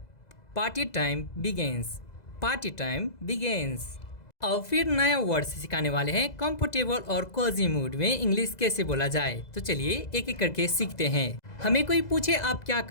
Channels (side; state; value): right; late; 2.0 ms